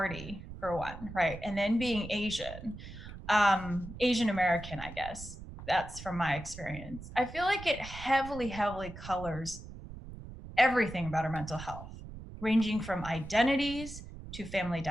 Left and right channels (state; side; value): noise; right; rumble, 12 dB below the sound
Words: for one, right, and then being Asian American, I guess that's from my experience. I feel like it heavily colors everything about our mental health, ranging from identities to family